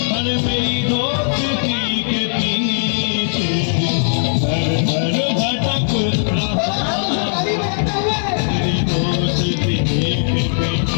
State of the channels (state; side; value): silent; right; 58 dB below the other